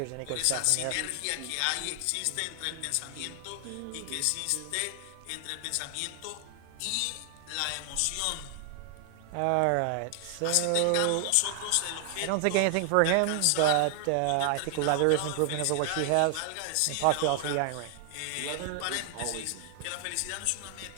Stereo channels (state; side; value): different; both; correlation 0.00